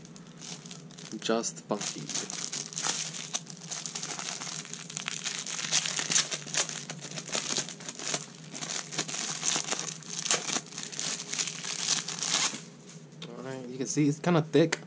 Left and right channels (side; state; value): both; identical; correlation 1.00